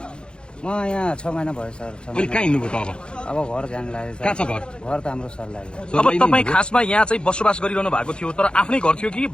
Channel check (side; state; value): right; late; 0.052 ms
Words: म यहाँ 6 महिना भयो सर। अहिले कहाँ हिँड्नुभयो त अब घर जान लाग्यो। कहाँ छ घर? घर त हाम्रो सर लाग्यो। अब तपाईँ खासमा यहाँ चाहिँ बसोबास गरिरहनु भएको थियो, तर आफ्नै घर थियो कि